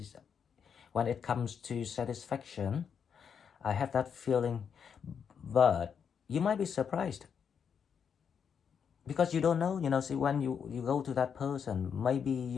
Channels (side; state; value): right; quieter; 7.1 dB